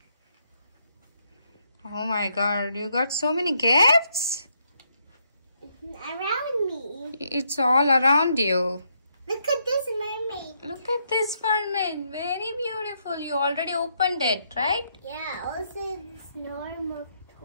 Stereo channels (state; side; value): inverted; both; correlation -0.76